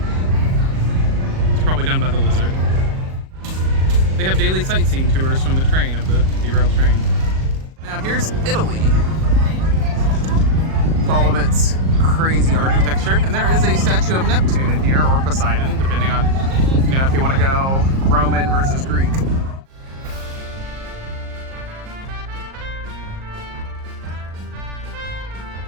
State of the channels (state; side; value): late; left; 38 ms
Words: It's probably done by the lizard. They have daily sightseeing tours from the train, of the derailed train. Now here's Italy. With all of its crazy architecture. And there is a statue of Neptune in here, or Poseidon, depending on, you know, if you want to go Roman versus Greek.